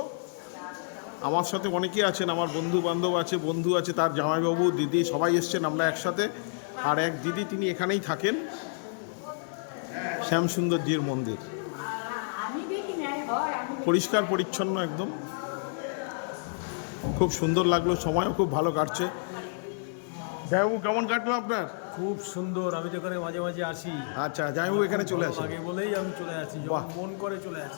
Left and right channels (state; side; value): silent; right; digital silence